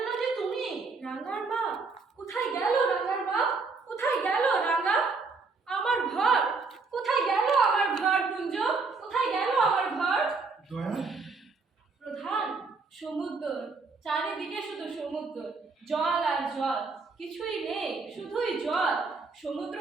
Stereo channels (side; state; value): left; quieter; 4.3 dB